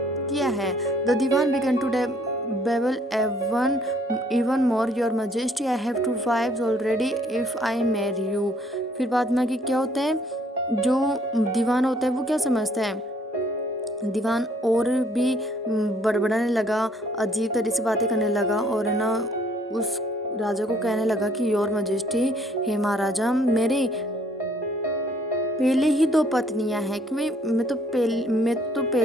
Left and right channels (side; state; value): both; normal; correlation 0.62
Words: है। The Dewan began to babble even more, your majesty I have 2 wives already if I marry you। फिर बाद में कि क्या होता है? जो दीवान होता है वो क्या समझता है? दीवान और भी बड़बड़ाने लगा, अजीब तरह से बातें करने लगा और है ना उस राजा को कहने लगा कि योर मजेस्टी, हे महाराजा, मेरे पहले ही 2 पत्नियां हैं, कि मैं तो